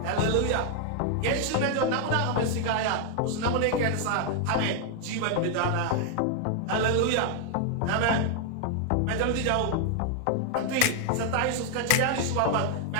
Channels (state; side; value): different; both; correlation 0.00